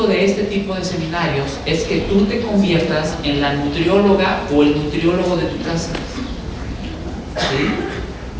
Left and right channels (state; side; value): identical; both; correlation 1.00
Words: de este tipo de seminarios es que tú te conviertas en la nutrióloga o el nutriólogo de tu casa. ¿Sí?